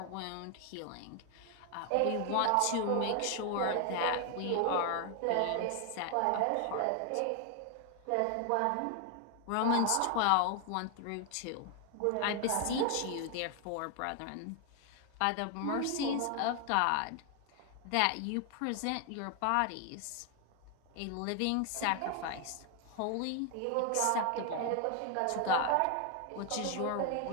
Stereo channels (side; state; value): both; different; correlation 0.00